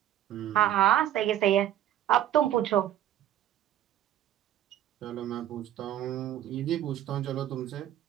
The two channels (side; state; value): left; quieter; 12.0 dB